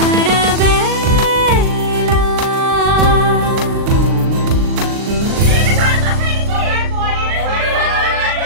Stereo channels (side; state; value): left; late; 39 ms